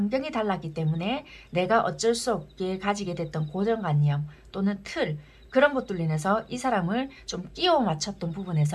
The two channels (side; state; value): both; identical; correlation 1.00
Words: 달랐기 때문에 내가 어쩔 수 없게 가지게 됐던 고정관념 또는 틀 그런 것들로 인해서 이 사람을 좀 끼워 맞췄던